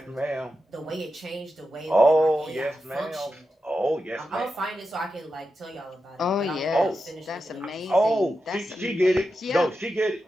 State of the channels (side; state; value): both; normal; correlation 0.89